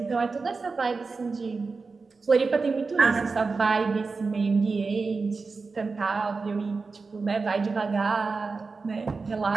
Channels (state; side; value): quieter; left; 4.3 dB